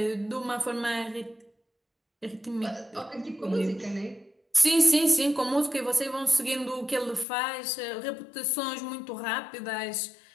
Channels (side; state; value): right; drops out; at 7.2 s